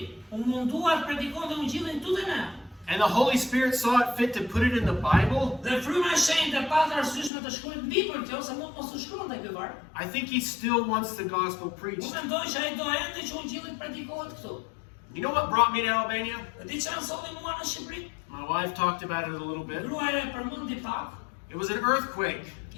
u mundua të predikonte ungjillin këtu te ne, and the Holy Spirit saw it fit to put it in the Bible, dhe fryma e shenjtë pata arsyeshme të shkruajë mbi për kjo, se mund mos u shkruante ky varg. I think he still wants the gospel Unë preached. mendoj që ai do ende që ungjilli predikohet këtu. You know what brought me to Albania? Dhe di çfarë solli mua në Shqipëri? My wife talked about it a little bit. Gruaja e përmendi pak, It was an earthquake.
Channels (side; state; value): right; drops out; at 7.3 s